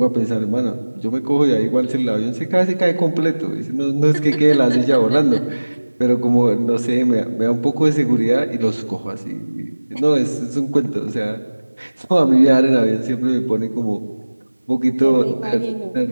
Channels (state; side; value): inverted; both; correlation -1.00